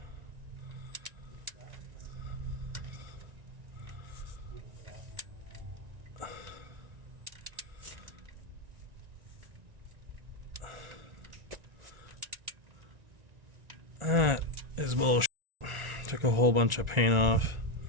That is bullshit. Took a whole bunch of paint off,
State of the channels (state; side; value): late; left; 1.9 ms